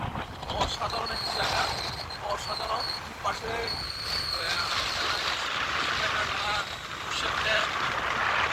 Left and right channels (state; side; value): identical; both; correlation 1.00